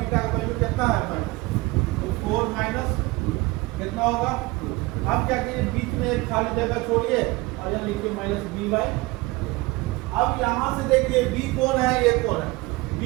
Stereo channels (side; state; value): left; quieter; 22.4 dB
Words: का वैल्यू कितना है माइनस, तो 4 माइनस कितना होगा 2। अब क्या कीजिए, बीच में एक खाली जगह छोड़िए और यहाँ लिखिए -b/। अब यहाँ से देखिए b कौन है, ये कौन है, b